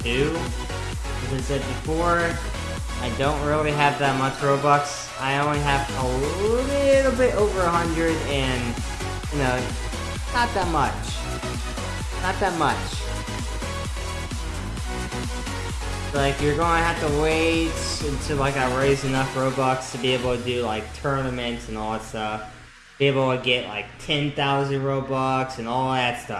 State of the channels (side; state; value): both; identical; correlation 1.00